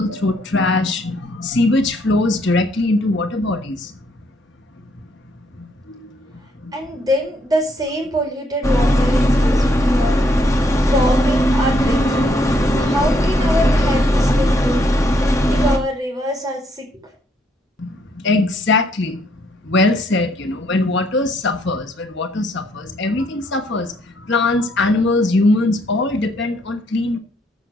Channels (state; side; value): normal; both; correlation 0.71